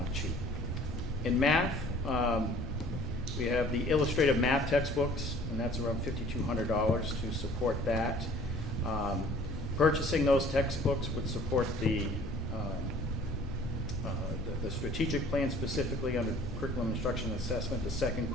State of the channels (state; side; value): normal; both; correlation 0.52